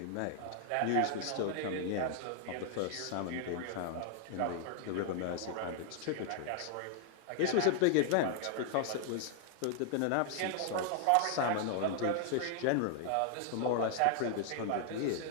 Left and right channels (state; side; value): different; both; correlation 0.00